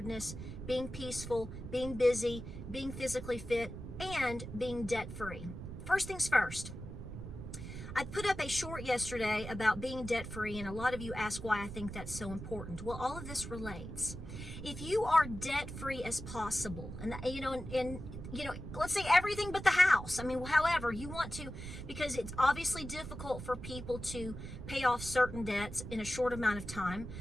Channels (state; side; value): noise; right; rumble, 9 dB below the sound